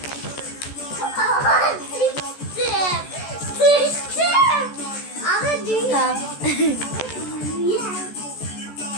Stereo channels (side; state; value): right; late; 14 ms